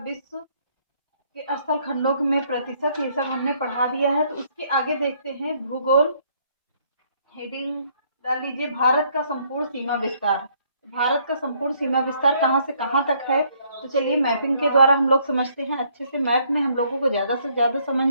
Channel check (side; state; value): both; inverted; correlation -0.67